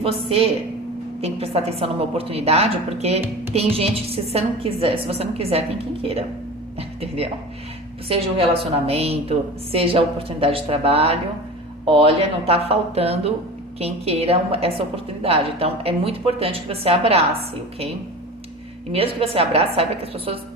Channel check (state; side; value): normal; both; correlation 0.33